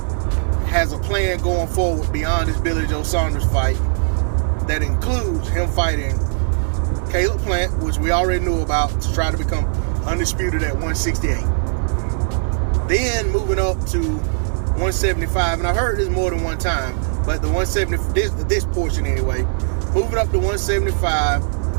has a plan going forward beyond this Billy Joe Saunders fight that includes him fighting Caleb Plant, which we already knew about, to try to become undisputed at 168. Then moving up to 175, and I heard this more than one time, but the 170, this portion anyway, moving up to 175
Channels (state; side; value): silent; left; digital silence